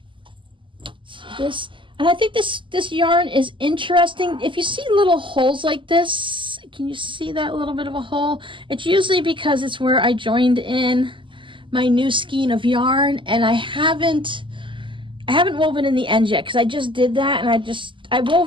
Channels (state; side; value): late; left; 0.24 ms